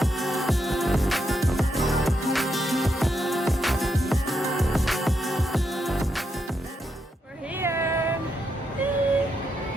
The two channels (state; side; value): normal; both; correlation 0.82